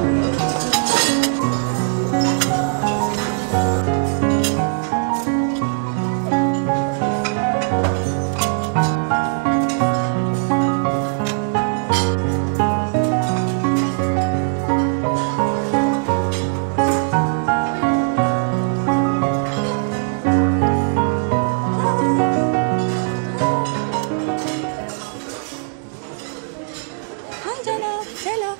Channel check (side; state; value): left; silent; digital silence